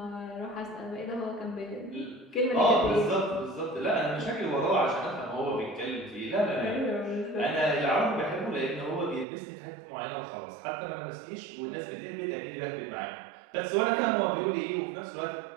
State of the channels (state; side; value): drops out; left; at 9.2 s